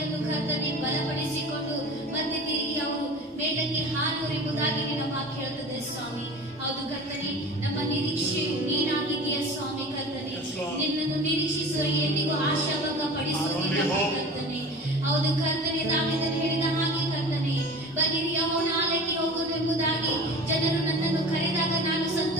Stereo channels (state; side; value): normal; both; correlation 0.37